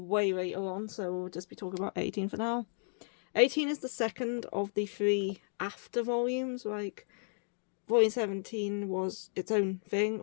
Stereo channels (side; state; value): right; silent; digital silence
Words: later on, so we'll just be talking about 18 for now. 18 is the second of the 3 after volumes. Volume 17 was its own thing,